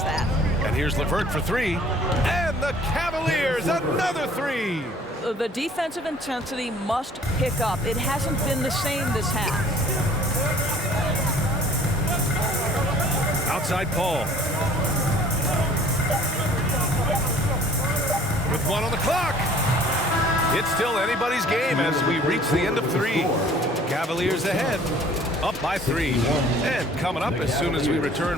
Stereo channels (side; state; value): both; normal; correlation 0.53